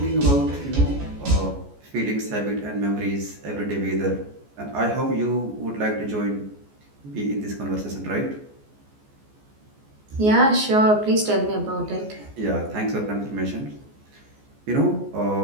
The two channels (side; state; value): left; late; 14 ms